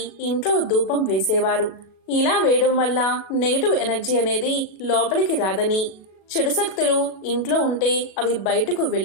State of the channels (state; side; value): late; right; 37 ms